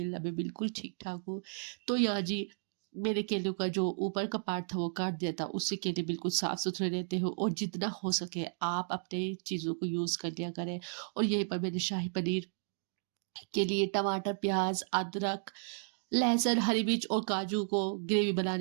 मैं बिल्कुल ठीक ठाक हूँ। तो यहाँ जी मेरे केलों का जो ऊपर का पार्ट था वो काट दिया था, उससे केले बिल्कुल साफ सुथरे रहते हो और जितना हो सके आप अपने चीज़ों को यूज़ कर लिया करें। और यहीं पर मैंने शाही पनीर के लिए टमाटर, प्याज, अदरक, लहसुन, हरी मिर्च और काजू को ग्रेवी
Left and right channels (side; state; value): left; silent; digital silence